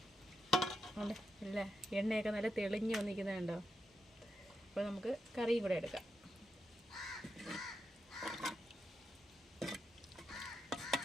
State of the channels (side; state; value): both; normal; correlation 0.85